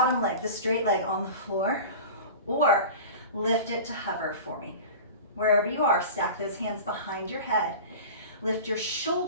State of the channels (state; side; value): inverted; both; correlation -0.34